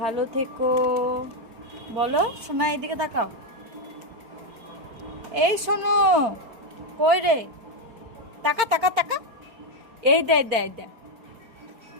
থেকো। বলো শোনা, এইদিকে তাকাও। এই শোনো, কই রে? তাকা তাকা তাকা, এই দে দে দে,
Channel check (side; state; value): left; late; 4.4 ms